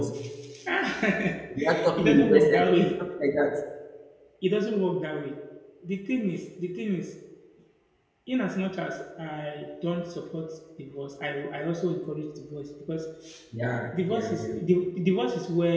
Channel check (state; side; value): identical; both; correlation 1.00